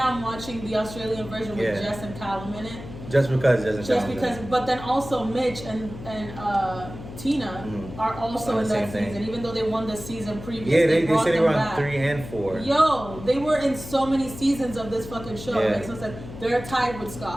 I'm watching the Australian version with Jess and Callum in it. Just because but then also Mitch and Tina are also in that season, even though they won the season previous. Yeah, they said they were on back. 3 and 4. Yo, they were in so many seasons of this fucking show. Yeah. It makes no sense. They're tied with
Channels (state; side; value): noise; left; hum, 13 dB below the sound